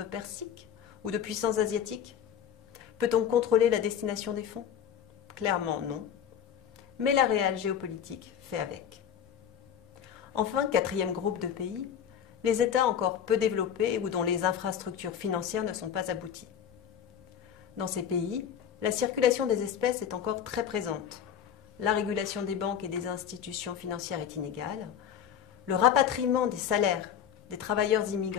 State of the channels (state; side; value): quieter; right; 8.8 dB